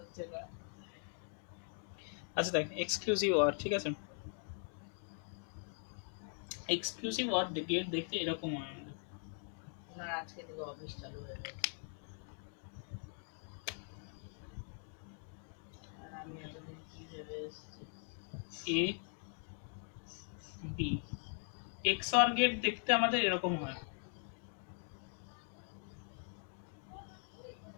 না। আচ্ছা দেখ, এক্সক্লুসিভ অর, ঠিক আছে, এক্সক্লুসিভ অর গেট দেখতে এরকম হয় আমাদের। ওনার আজকে থেকে অফিস চালু হয়ে গেছে, আর আমি এতদিন কি ভেবে এসেছি। এ বি এক্সঅর গেট দেখতে আমাদের এরকম হয়,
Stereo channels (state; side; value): silent; right; 50 dB below the other